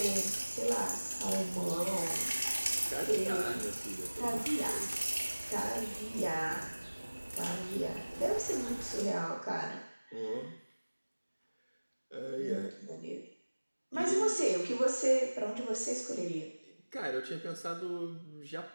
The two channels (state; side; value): inverted; both; correlation -1.00